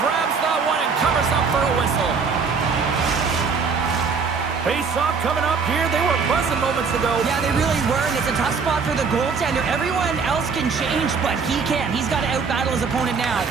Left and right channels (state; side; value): quieter; left; 5.3 dB